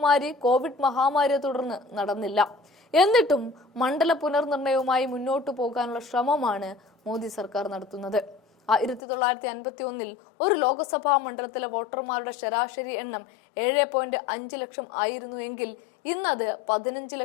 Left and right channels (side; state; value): right; drops out; at 9.0 s